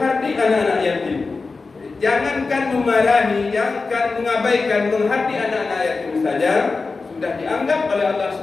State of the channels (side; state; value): right; quieter; 4.1 dB